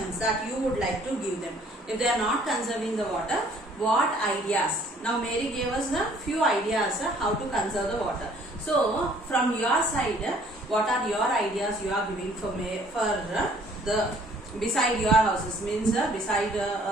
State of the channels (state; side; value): normal; both; correlation 0.58